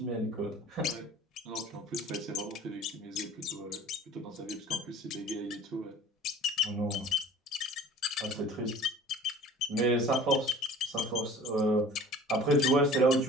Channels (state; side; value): normal; both; correlation 0.45